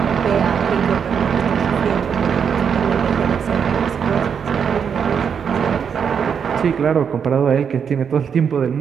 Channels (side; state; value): left; quieter; 7.1 dB